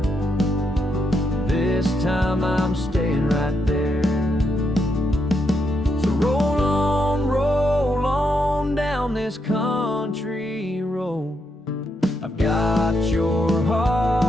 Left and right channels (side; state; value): both; normal; correlation 0.80